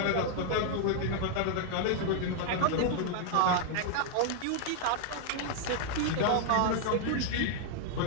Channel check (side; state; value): both; different; correlation 0.00